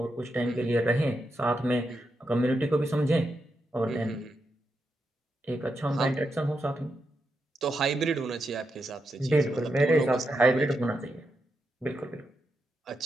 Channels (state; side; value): normal; both; correlation 0.85